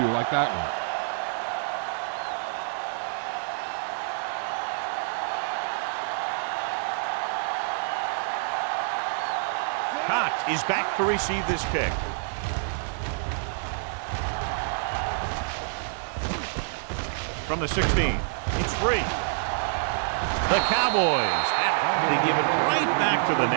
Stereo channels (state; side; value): silent; left; digital silence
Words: like that one. Cox is back to receive this kick. From the 16, it's free. The Cowboys have to give it right back to the